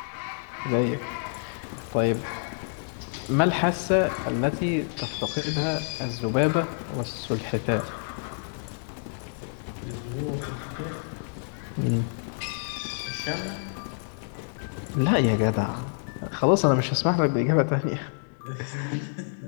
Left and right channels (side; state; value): right; silent; digital silence